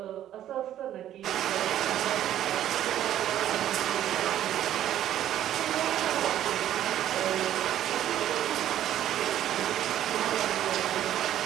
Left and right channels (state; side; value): quieter; left; 11.8 dB